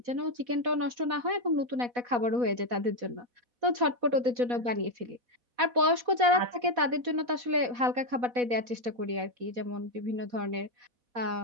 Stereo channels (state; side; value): late; left; 4.1 ms